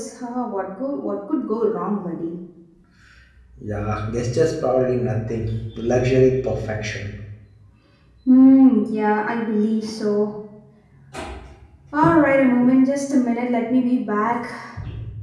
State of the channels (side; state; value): both; identical; correlation 1.00